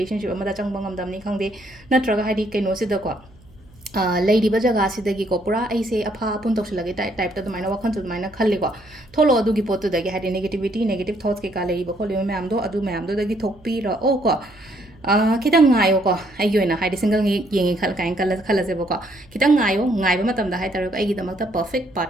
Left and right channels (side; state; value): right; noise; hum, 27 dB below the sound